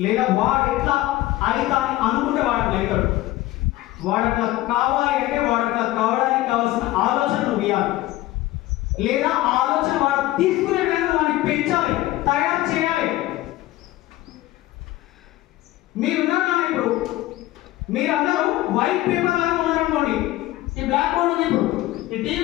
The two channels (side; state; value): right; quieter; 16.7 dB